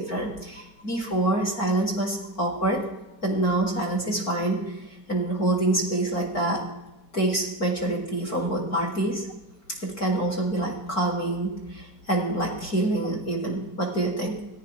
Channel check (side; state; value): right; late; 4.5 ms